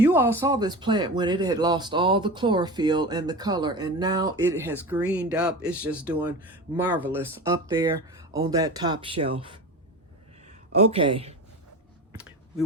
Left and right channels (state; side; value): normal; both; correlation 0.29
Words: all saw this plant when it had lost all the chlorophyll and the color. And now it has greened up. It's just doing marvelous up there on that top shelf. Okay, we